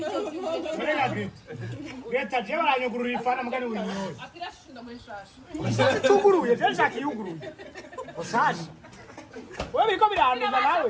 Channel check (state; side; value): identical; both; correlation 1.00